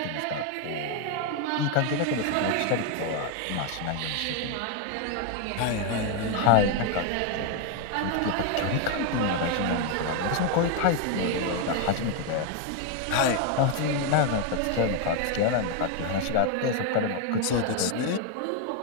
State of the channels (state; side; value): different; both; correlation 0.01